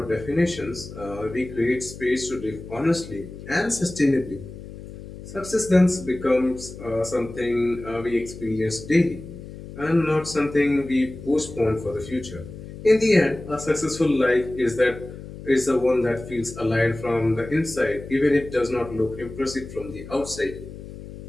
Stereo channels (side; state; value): left; noise; hum, 13 dB below the sound